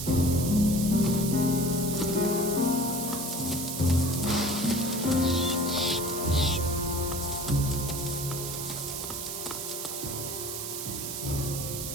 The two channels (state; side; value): noise; right; hiss, 5 dB below the sound